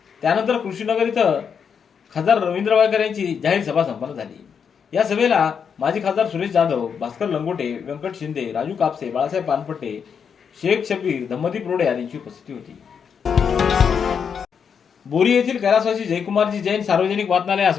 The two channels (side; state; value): right; quieter; 6.9 dB